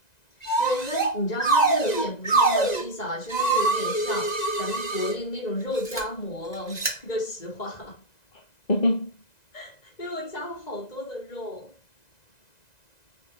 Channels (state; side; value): late; right; 1.9 ms